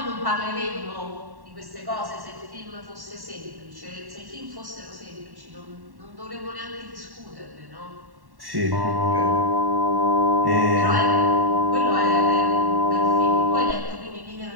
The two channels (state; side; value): late; left; 1.1 ms